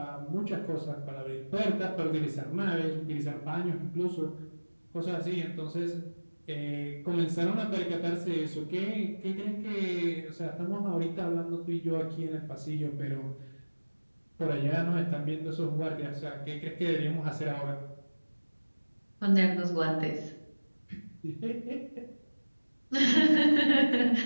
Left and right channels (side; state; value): both; inverted; correlation -1.00